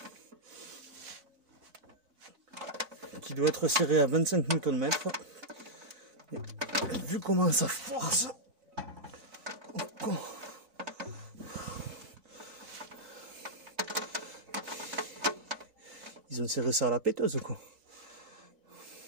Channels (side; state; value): left; late; 4.6 ms